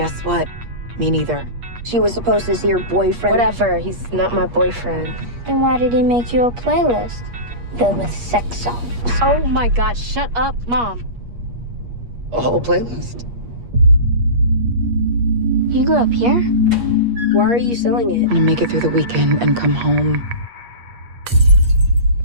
what? Me neither. She was supposed to see your boyfriend. Whatever, he's not my boyfriend. Then why did he make you a playlist filled with sex songs? Oh my God, shut up, Mom. A whole playlist. You grew up here? Why are you selling it? I'm gonna make it through the weekend and come home.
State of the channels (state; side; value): late; left; 8.4 ms